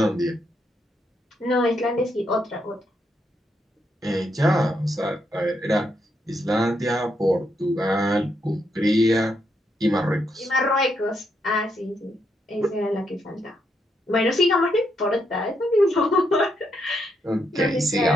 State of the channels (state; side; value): normal; both; correlation 0.79